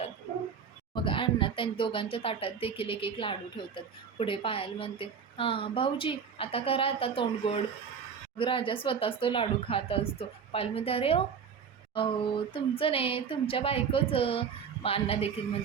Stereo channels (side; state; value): left; quieter; 6.7 dB